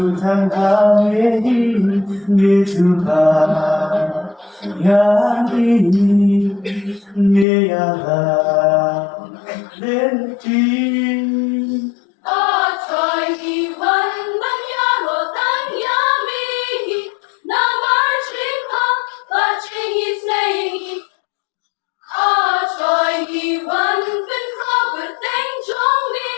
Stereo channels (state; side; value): drops out; right; at 7.5 s